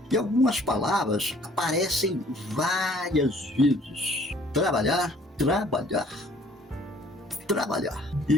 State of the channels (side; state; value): both; normal; correlation 0.57